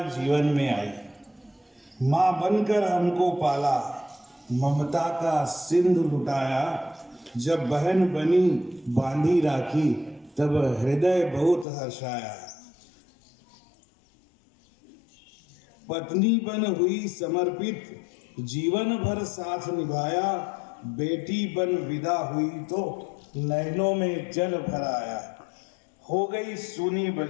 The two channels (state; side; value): drops out; right; at 11.7 s